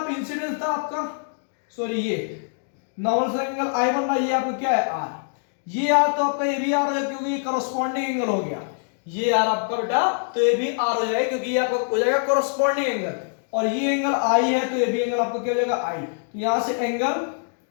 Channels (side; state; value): right; silent; digital silence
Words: इंसिडेंस था आपका, सॉरी ये नॉर्मल सा एंगल आई बन रहा है, ये आपका क्या है आर, ये आर तो आपका ये भी आर है क्योंकि ये करस्पॉन्डिंग एंगल हो गया, ये आर आपका बेटा तो ये भी आर हो जाएगा क्योंकि ये आपका हो जाएगा करस्पॉन्डिंग एंगल, और ये एंगल आई है तो ये भी एंगल आपका क्या हो जाएगा आई। तो यहां से एंगल